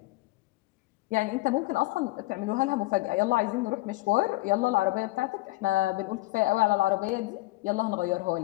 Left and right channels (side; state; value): right; quieter; 20.4 dB